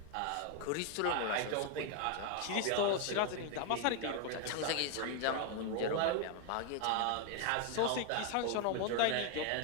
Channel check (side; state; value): both; different; correlation 0.01